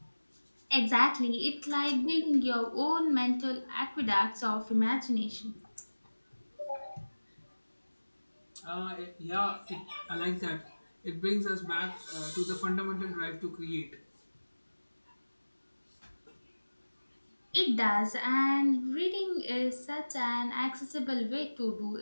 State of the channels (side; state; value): both; inverted; correlation -1.00